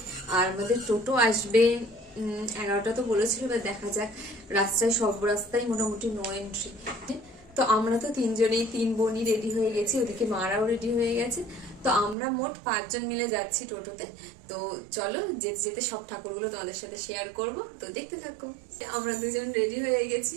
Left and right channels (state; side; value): drops out; left; at 12.2 s